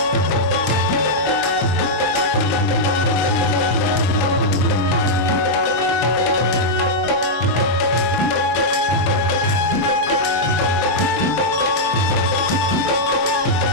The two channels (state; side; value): normal; both; correlation -0.05